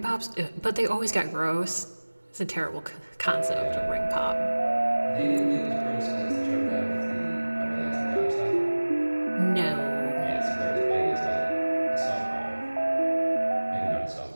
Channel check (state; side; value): inverted; both; correlation -1.00